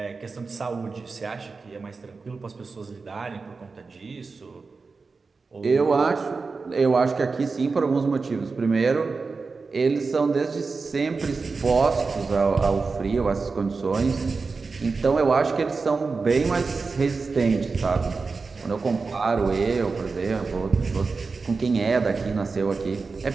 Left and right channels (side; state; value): left; quieter; 4.4 dB